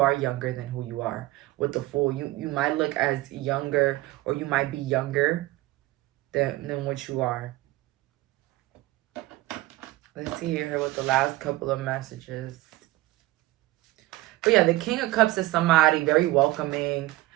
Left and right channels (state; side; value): quieter; left; 18.1 dB